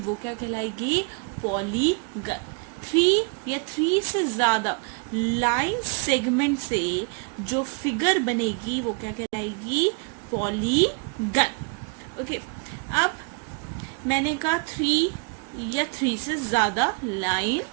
क्या कहलाएगी, पॉलीगन। 3 या 3 से ज्यादा लाइन सेगमेंट से जो फिगर बनेगी वो क्या कहलाएगी, पॉलीगन। ओके, अब मैंने कहा 3 या 3 से ज्यादा लाइन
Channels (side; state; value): left; quieter; 35.2 dB